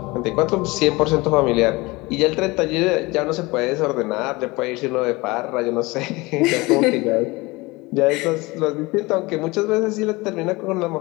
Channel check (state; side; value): quieter; right; 22.9 dB